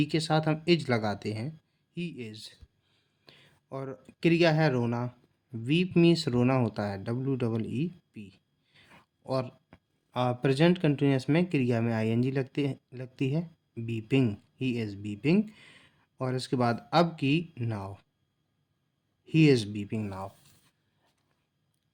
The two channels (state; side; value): identical; both; correlation 1.00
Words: के साथ हम इज लगाते हैं, ही इज। और क्रिया है रोना। वीप मीन्स रोना होता है, WEEP। और प्रेजेंट कंटिन्यूअस में क्रिया में ING लगती है, बीपिंग, ही इज़ बीपिंग। और इसके बाद अब की now, he is beeping now.